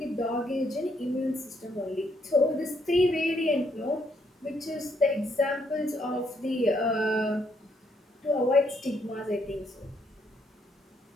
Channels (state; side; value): normal; both; correlation 0.72